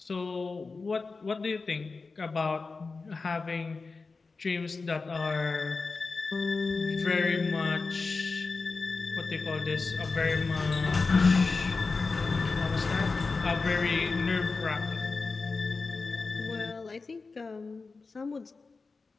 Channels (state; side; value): quieter; right; 4.1 dB